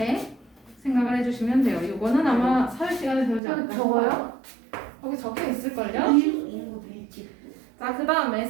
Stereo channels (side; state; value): left; drops out; at 3.4 s